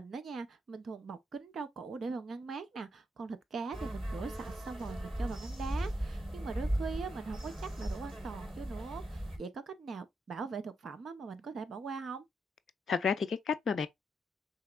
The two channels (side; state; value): both; normal; correlation 0.81